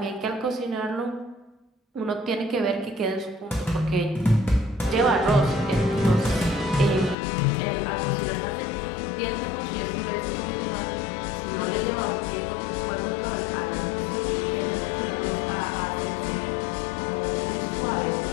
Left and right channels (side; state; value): right; drops out; at 7.2 s